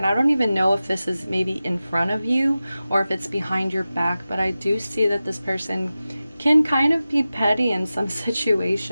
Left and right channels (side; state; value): both; inverted; correlation -0.95